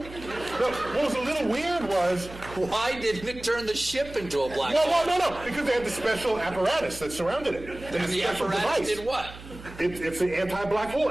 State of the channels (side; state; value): right; noise; hum, 16 dB below the sound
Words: was a little weird was... Why didn't it turn the ship into a black hole? No, because they had the special apparatus that surrounded it. And the apparatus did what? It's the anti-black hole